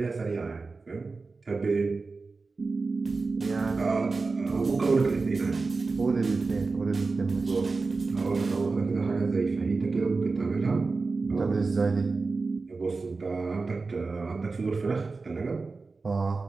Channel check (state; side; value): quieter; left; 4.0 dB